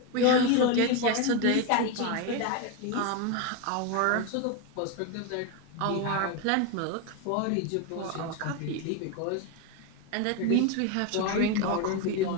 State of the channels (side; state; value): both; different; correlation 0.02